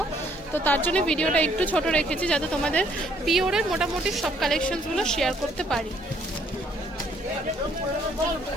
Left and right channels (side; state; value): both; normal; correlation 0.65